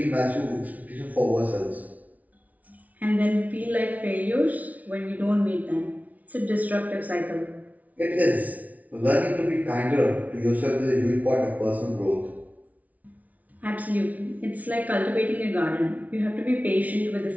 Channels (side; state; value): left; late; 0.072 ms